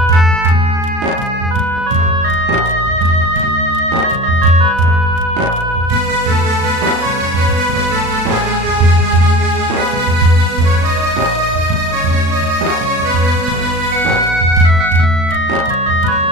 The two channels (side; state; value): left; late; 36 ms